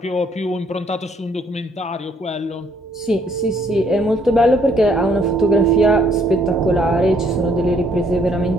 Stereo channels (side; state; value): both; normal; correlation 0.66